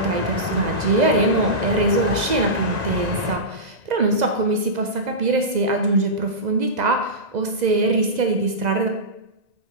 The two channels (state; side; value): late; left; 2.0 ms